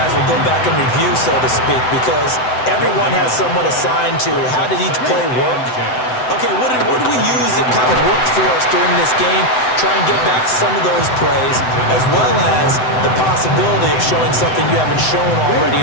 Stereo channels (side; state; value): right; late; 7.9 ms